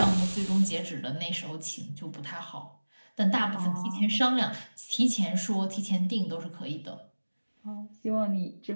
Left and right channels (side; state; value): both; inverted; correlation -1.00